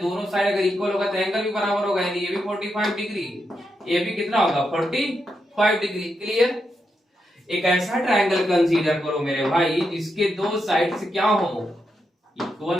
दोनों साइड अगर इक्वल होगा तो एंगल भी बराबर होगा, यानी ये भी 45 डिग्री, ये भी कितना होगा 45 डिग्री। क्लियर। एक ऐसा ट्राइंगल कंसीडर करो मेरे भाई जिसके दो साइड से क्या हो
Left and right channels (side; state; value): both; normal; correlation 0.84